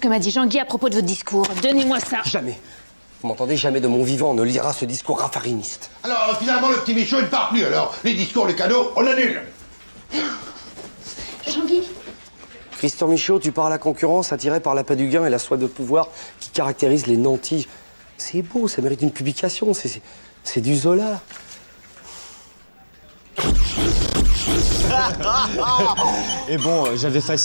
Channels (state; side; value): inverted; both; correlation -1.00